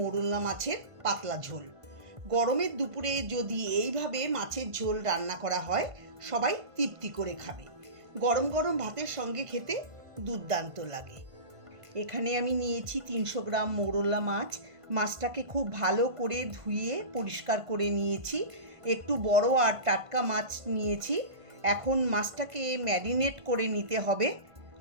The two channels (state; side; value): late; left; 1.5 ms